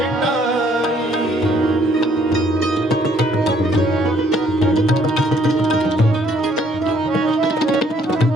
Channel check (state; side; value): normal; both; correlation 0.65